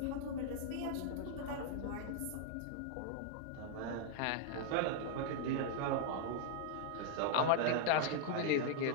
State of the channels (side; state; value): both; different; correlation 0.00